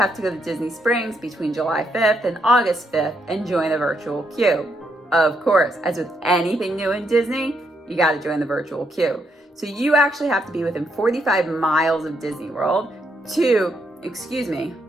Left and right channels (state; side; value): normal; both; correlation 0.77